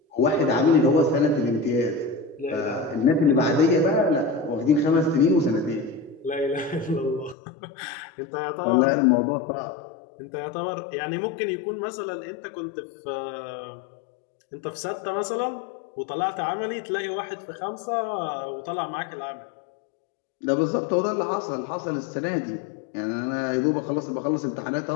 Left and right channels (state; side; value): drops out; right; at 7.4 s